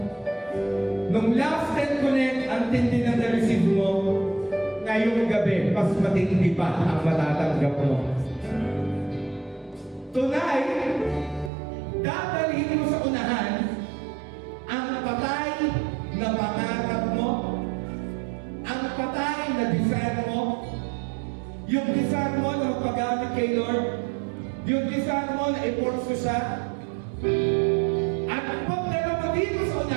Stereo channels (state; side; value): drops out; left; at 11.5 s